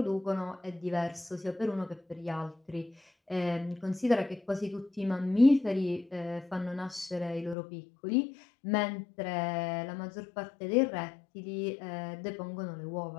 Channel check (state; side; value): drops out; right; at 7.6 s